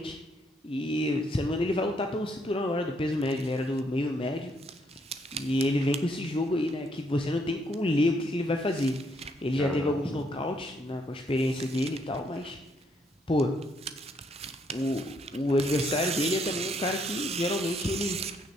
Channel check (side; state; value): both; normal; correlation 0.72